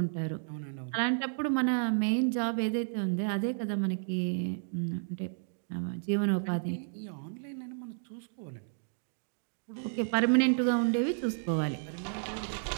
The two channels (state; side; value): silent; left; digital silence